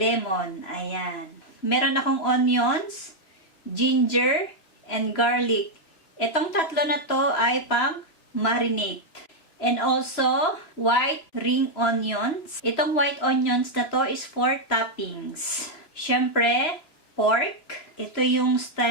Ayan. Meron akong onions, ginger, and garlic. Itong tatlo na to ay pang marinate. And also, white ring onions. Itong white onions na to is for toppings. Siyempre, pork. Ito yung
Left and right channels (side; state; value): right; late; 3.0 ms